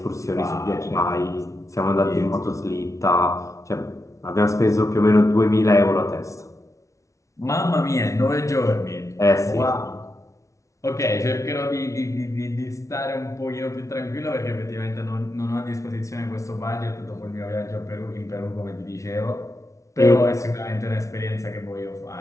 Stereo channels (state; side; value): late; right; 0.15 ms